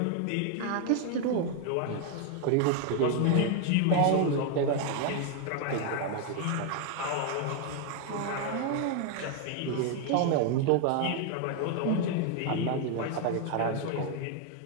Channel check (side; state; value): both; different; correlation 0.01